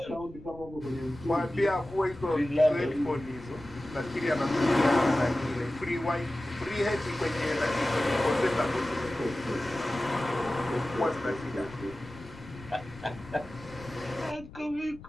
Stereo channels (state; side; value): noise; left; rumble, 18 dB below the sound